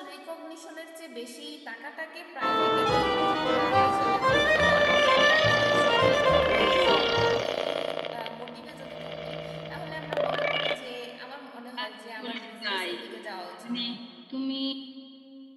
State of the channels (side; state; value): both; identical; correlation 1.00